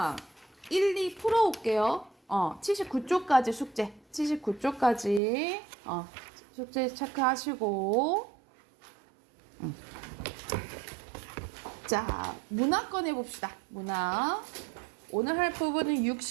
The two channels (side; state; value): left; drops out; at 5.2 s